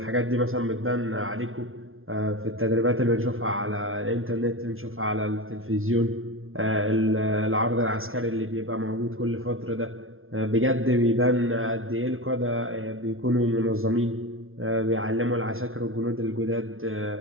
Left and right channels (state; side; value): late; left; 0.61 ms